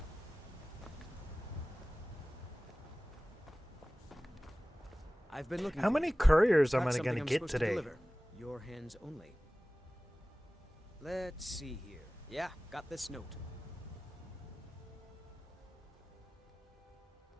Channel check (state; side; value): normal; both; correlation 0.97